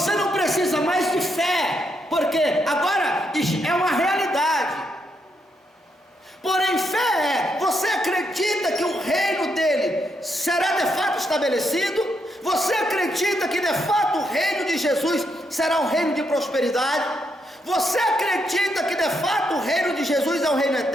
não precisa mais de fé, porque agora é uma realidade. Porém, fé é, você acredita que o reino dele será de fato estabelecido? Você acredita que de fato o reino de Jesus será um reino de prosperidade? Você acredita que de fato o reino de Jesus é um reino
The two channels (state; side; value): normal; both; correlation 0.79